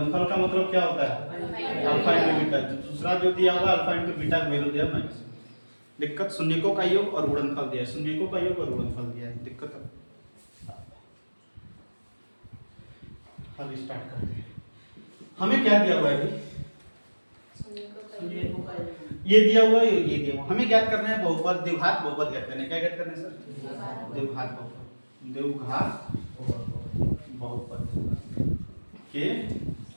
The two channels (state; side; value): inverted; both; correlation -1.00